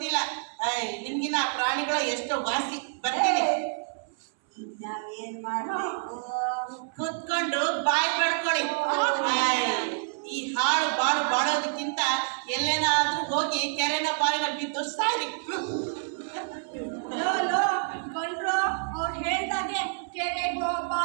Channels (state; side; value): silent; left; 59 dB below the other